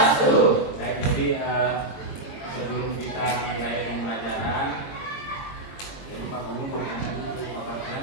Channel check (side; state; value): right; late; 22 ms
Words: Baik, jadi sebelum kita mulai pembelajaran, jadi Pak Guru boleh nanya dulu, Bapak